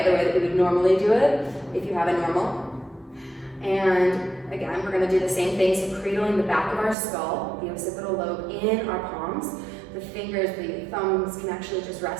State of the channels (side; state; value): left; drops out; at 7.0 s